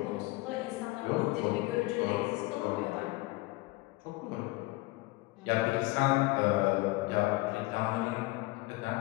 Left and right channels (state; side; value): quieter; right; 21.4 dB